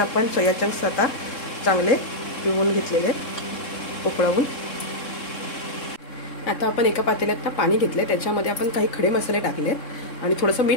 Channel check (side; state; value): right; late; 3.7 ms